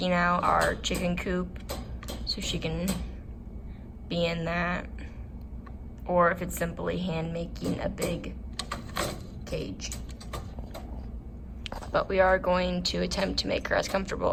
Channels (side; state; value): both; identical; correlation 1.00